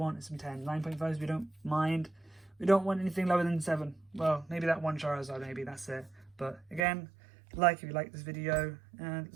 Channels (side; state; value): left; drops out; at 6.9 s